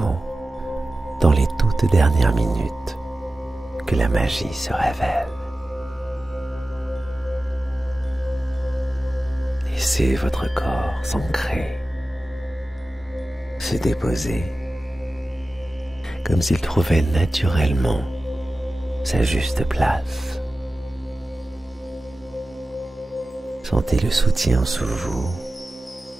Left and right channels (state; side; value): normal; both; correlation 0.95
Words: dans les toutes dernières minutes que la magie se révèle. Laissez votre corps s'ancrer, se déposer, comme s'il trouvait naturellement sa juste place. Sentez le soutien sous vous,